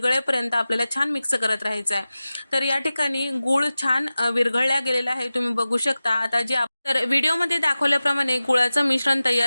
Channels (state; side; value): inverted; both; correlation -0.96